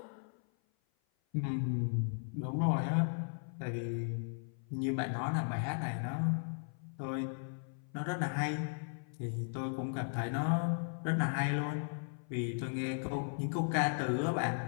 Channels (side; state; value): right; silent; 53 dB below the other